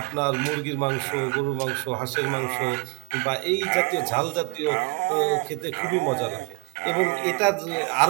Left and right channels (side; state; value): left; quieter; 32.9 dB